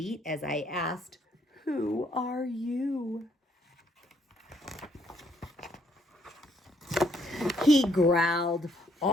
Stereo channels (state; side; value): normal; both; correlation 0.69